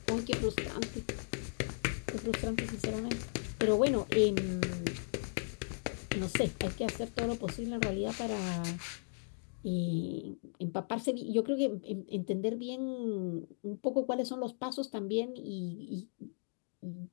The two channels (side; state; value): right; silent; digital silence